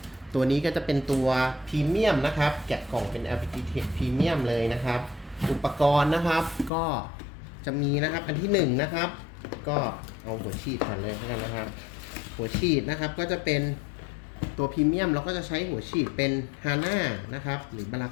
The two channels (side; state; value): right; drops out; at 6.7 s